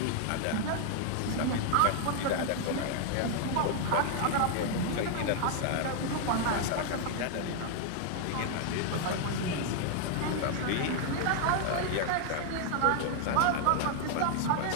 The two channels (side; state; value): both; different; correlation 0.00